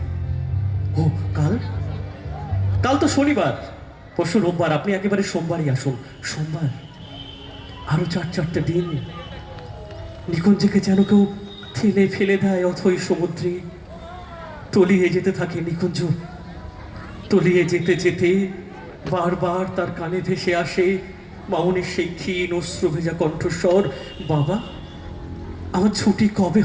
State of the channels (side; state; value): both; identical; correlation 1.00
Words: ও কাল, কাল তো শনিবার, পরশু রোববার, আপনি একেবারে সোমবারই আসুন। সোমবার? আরো 4-4টে দিন। নিকুঞ্জকে যেন কেউ ঠেলে ফেলে দেয় অথই সমুদ্রে। তলিয়ে যেতে থাকে নিকুঞ্জ, তলিয়ে যেতে যেতে বারবার তার কানে ভেসে আসে মামনির সেই ক্ষীণ অশ্রু ভেজা কণ্ঠস্বর, বাবা আমার ছুটি কবে